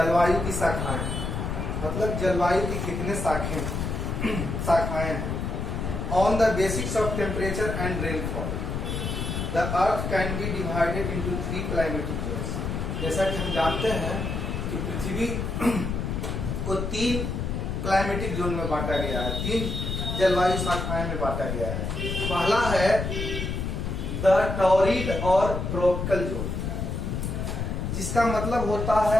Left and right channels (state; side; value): noise; left; rumble, 3 dB below the sound